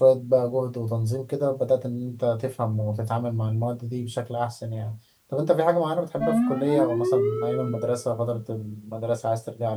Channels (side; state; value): both; identical; correlation 1.00